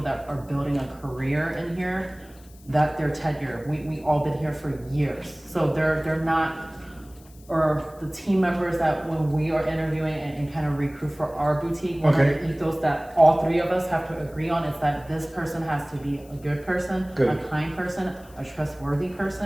that are building a career in here, that their tenure, we all been here for years. So they're not, or the team members that when we are interviewing and kind of recruit for our boutique, one of the ethos that all three of us have to agree on is that this person has to be a good person, a kind person, a trustworthy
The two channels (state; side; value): noise; left; hiss, 26 dB below the sound